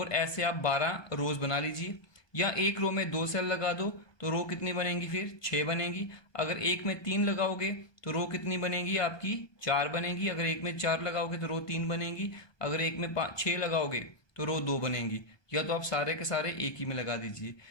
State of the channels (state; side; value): late; right; 1.2 ms